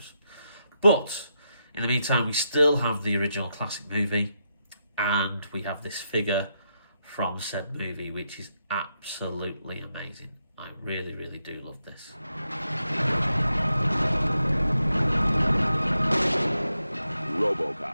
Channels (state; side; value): inverted; both; correlation -0.83